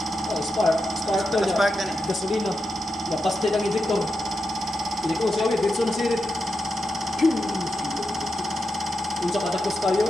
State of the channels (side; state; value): both; normal; correlation 0.88